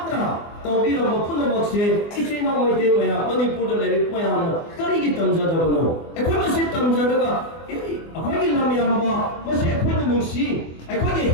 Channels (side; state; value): right; late; 24 ms